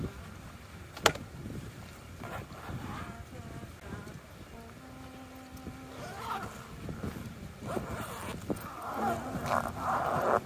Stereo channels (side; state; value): both; identical; correlation 1.00